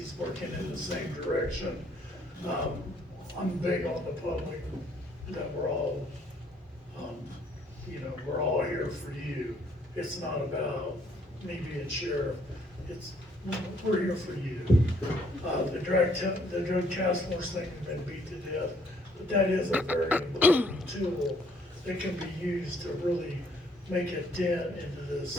working in the same direction. I'm big on the public, that we're all, we're all here for you. It's not about me being sheriff, it's, we're here for you. The drug task force thing has been beat to death, but that is a very important tool that can be used to really make a dent into this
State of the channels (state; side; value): normal; both; correlation 0.65